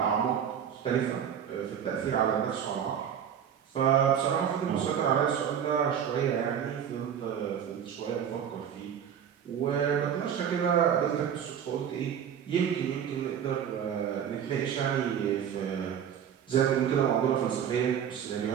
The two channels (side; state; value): left; quieter; 8.6 dB